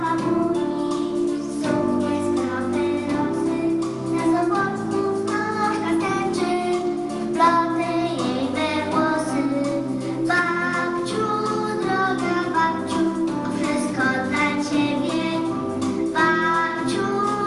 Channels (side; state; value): both; identical; correlation 1.00